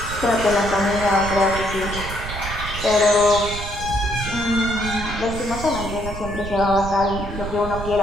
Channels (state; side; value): noise; right; rumble, 8 dB below the sound